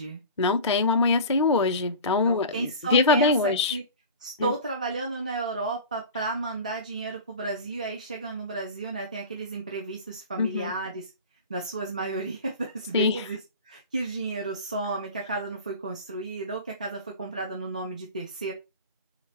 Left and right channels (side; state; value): both; inverted; correlation -0.34